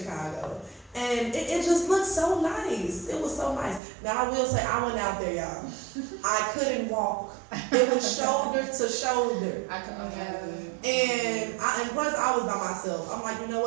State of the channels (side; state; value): left; drops out; at 3.8 s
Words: And it just looked so nice. It was so nice. Now, I will say, I went out there, y'all. I couldn't walk. It was shoulder to shoulder. I couldn't imagine. And plus, I was by myself. I'm like, you know